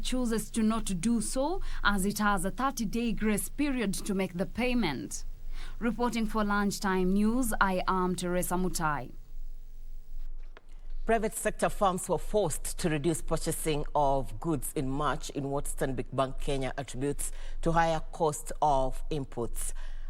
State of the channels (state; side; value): identical; both; correlation 1.00